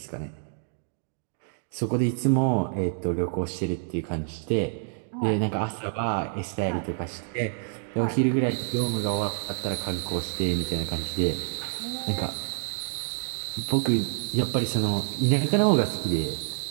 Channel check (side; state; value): left; silent; digital silence